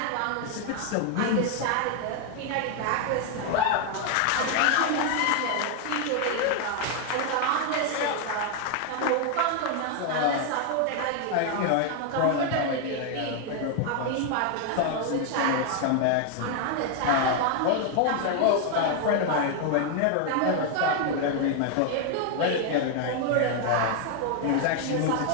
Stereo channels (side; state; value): both; different; correlation 0.00